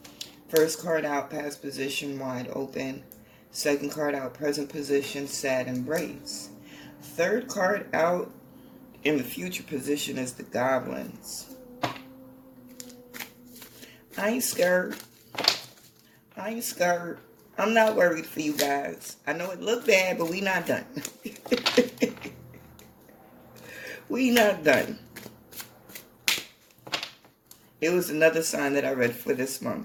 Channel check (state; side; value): identical; both; correlation 1.00